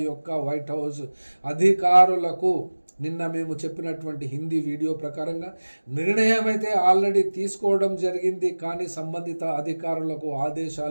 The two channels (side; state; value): both; inverted; correlation -1.00